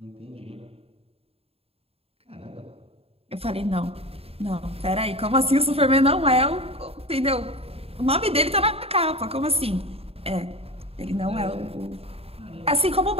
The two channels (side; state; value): left; late; 0.28 ms